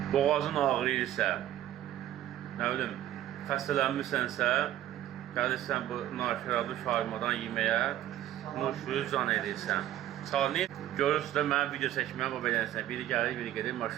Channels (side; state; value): left; quieter; 12.7 dB